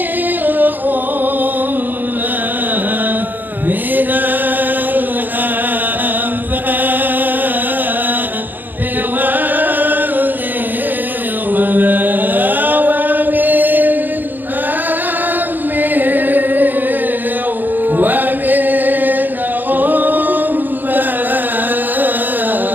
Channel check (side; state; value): left; late; 0.088 ms